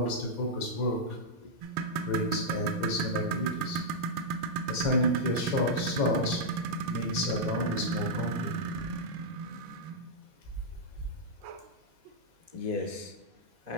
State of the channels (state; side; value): late; left; 4.6 ms